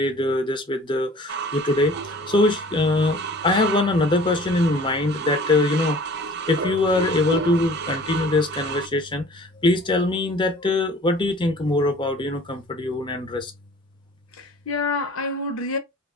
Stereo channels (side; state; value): both; normal; correlation 0.48